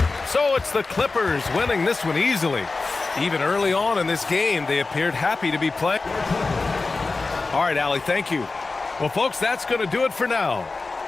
So it's the Clippers winning this one easily. Even early on in this game, they appeared happy to be playing. All right, Allie, thank you. Well, folks, that's going to do it for now.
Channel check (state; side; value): quieter; right; 3.8 dB